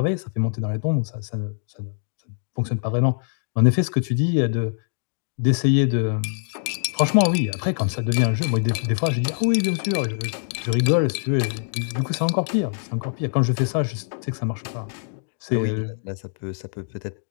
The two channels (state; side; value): silent; right; digital silence